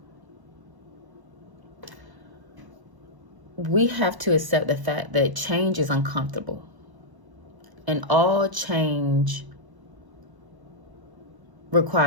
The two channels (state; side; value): late; left; 1.1 ms